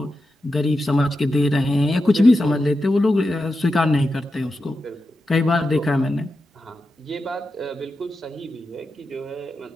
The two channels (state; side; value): normal; both; correlation 0.89